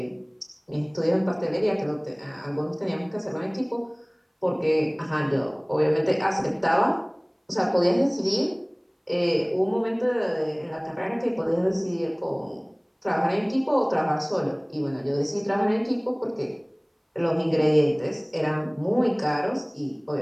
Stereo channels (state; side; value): identical; both; correlation 1.00